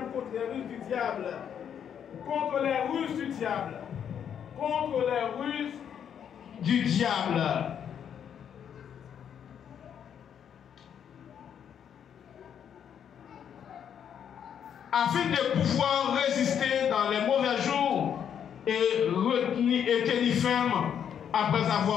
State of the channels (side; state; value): right; quieter; 8.6 dB